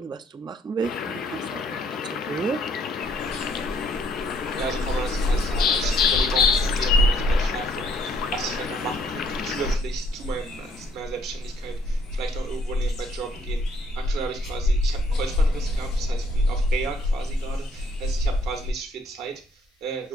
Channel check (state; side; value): normal; both; correlation 0.65